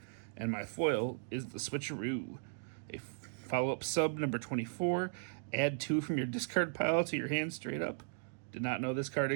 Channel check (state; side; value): silent; left; digital silence